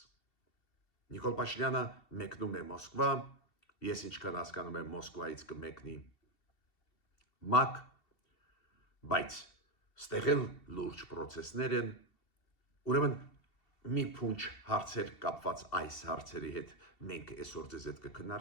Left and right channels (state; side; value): late; right; 2.7 ms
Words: Նիկոլ Փաշինյանը մեկնում է Մոսկվա, ես ինչքան հասկանում եմ Մոսկվայից կմեկնի ՄԱԿ, բայց ստեղ էլ լուրջ պրոցեսներ են, ուրեմն մի փունջ հարցեր կապված այս հարցերի հետ մենք այսօր ձեզ հետ